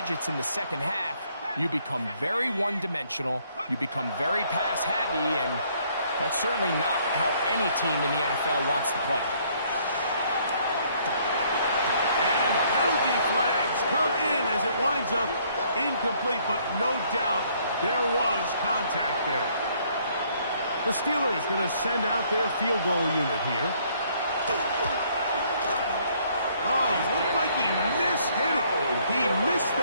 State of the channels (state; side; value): inverted; both; correlation -0.65